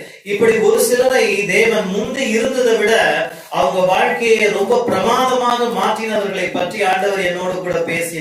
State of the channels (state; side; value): identical; both; correlation 1.00